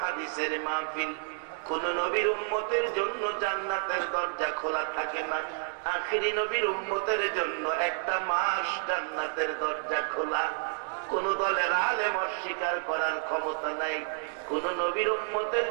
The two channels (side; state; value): left; silent; 58 dB below the other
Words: হাদিসের মাহফিল। কোন নবীর উম্মতের জন্য জান্নাতের দরজা খোলা থাকে না, আখিরি নবীর উম্মতের জন্য একটা মাস জান্নাতের দরজা খোলা। কোন দলের আলেম অস্বীকার করার ক্ষমতা নাই। কোন নবীর উম্মতের